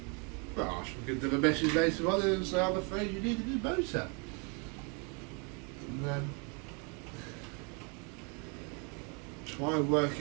Well, I shall give them a message later on and say, I'm afraid you need a new motor. And then try and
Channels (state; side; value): quieter; left; 34.4 dB